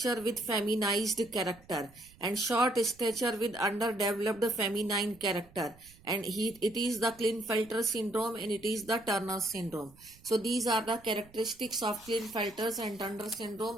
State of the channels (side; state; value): right; noise; rumble, 25 dB below the sound